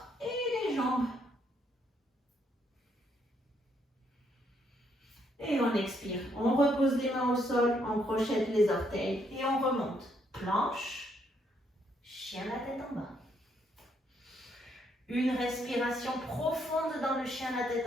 et les jambes. Et on expire. On repose les mains au sol, on crochette les orteils et on remonte. Planche, chien la tête en bas. Une respiration profonde dans le chien la tête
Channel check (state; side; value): normal; both; correlation 0.73